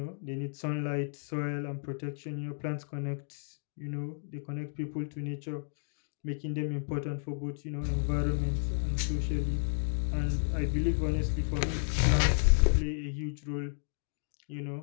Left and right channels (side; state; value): right; silent; digital silence